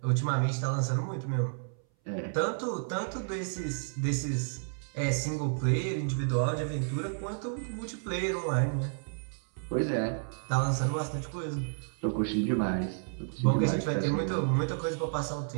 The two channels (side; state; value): left; silent; 57 dB below the other